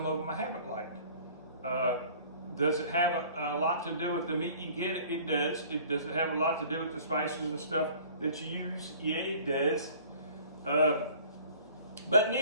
of them I haven't liked. Does it have a lot to do with the meat you get? It does. Does it have a lot to do with the spices and stuff that you use? Yeah, it does. But in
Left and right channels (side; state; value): both; inverted; correlation -0.49